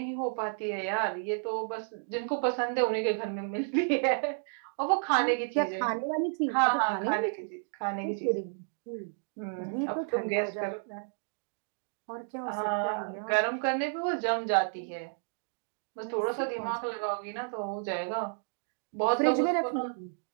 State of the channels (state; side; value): silent; left; digital silence